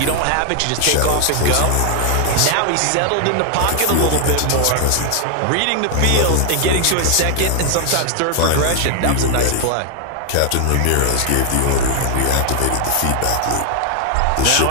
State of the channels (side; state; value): both; different; correlation 0.00